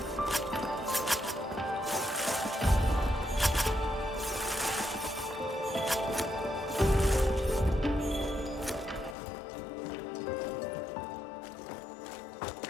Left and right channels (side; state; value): right; drops out; at 9.2 s